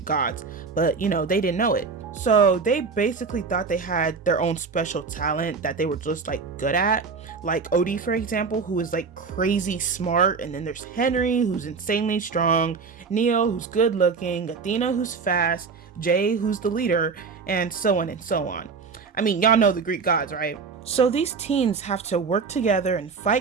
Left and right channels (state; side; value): quieter; left; 5.1 dB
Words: gods, but they didn't know it. So they basically thought they had their own special talent that they were just like good at. Like Odie, for example, who is like crazy smart. And then there's Henry, who's insanely strong. Neo, who's good looking. Athena, who's fast. Jay, who's the leader. And so on and so on. I mean, y'all know the Greek gods, right? So these teens have to work together and